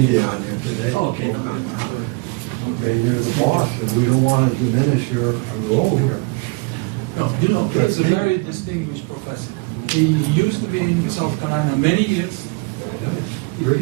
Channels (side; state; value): left; quieter; 28.8 dB